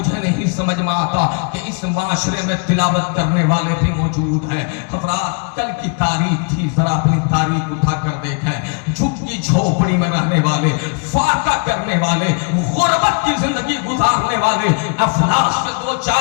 نہیں سمجھ میں آتا کہ اس معاشرے میں تلاوت کرنے والے بھی موجود ہیں. حضرات کل کی تاریخ تھی، ذرا اپنی تاریخ اٹھا کر دیکھیں. جھکی جھوپڑی میں رہنے والے، فاقہ کرنے والے، غربت کی زندگی گزارنے والے افلاس سے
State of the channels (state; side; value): quieter; right; 37.7 dB